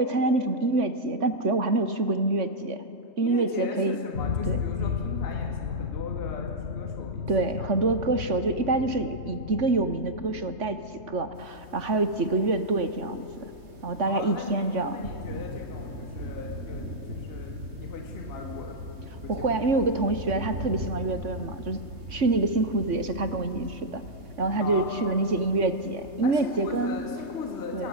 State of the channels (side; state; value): left; late; 3.5 ms